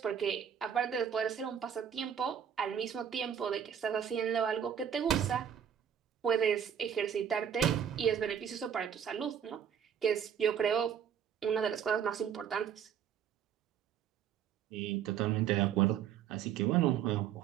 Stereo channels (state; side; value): quieter; left; 8.5 dB